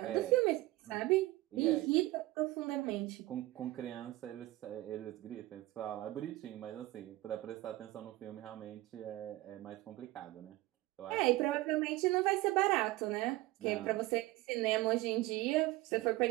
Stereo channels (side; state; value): left; quieter; 18.6 dB